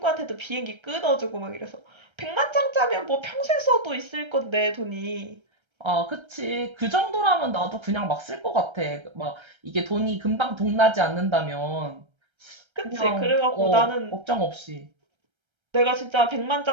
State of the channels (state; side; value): late; left; 1.3 ms